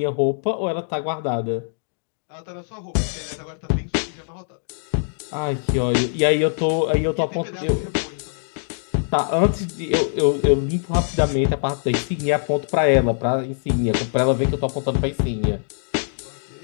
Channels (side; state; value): right; silent; digital silence